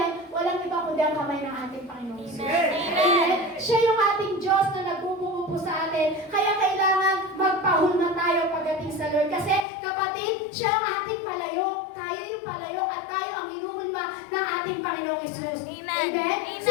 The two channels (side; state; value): right; drops out; at 9.6 s